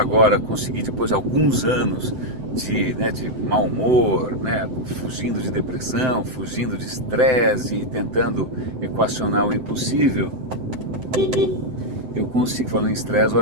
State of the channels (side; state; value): left; late; 7.9 ms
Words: consegui, depois de alguns anos de mau humor, né, fugindo de depressão, fugindo de estresse e tentando equacionar o impossível, eu consigo, falando em estresse,